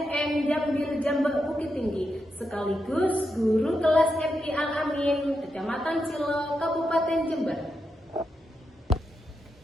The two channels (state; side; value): normal; both; correlation 0.85